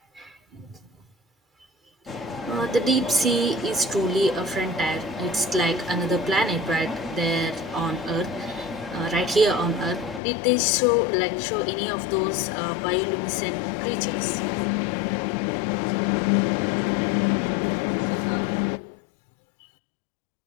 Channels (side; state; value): right; drops out; at 10.2 s